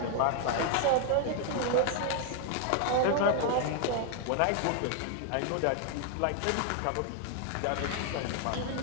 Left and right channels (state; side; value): different; both; correlation 0.00